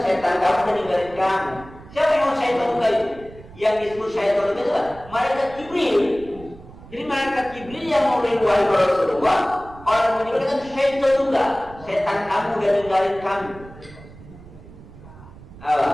setan kamu meninggalkan kamu. Siapa yang syaitan itu? Yang disebut syaitan itu adalah malaikat Jibril. Jadi malaikat Jibril yang memberi wahyu kepada Rasulullah, orang menyebutkan syaitan juga. Setan kamu dan ninggalin kamu.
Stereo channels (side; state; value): right; noise; rumble, 19 dB below the sound